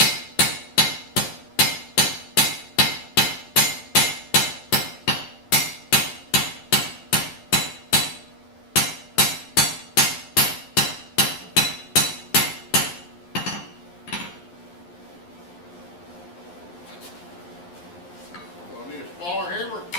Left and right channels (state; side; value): late; right; 11 ms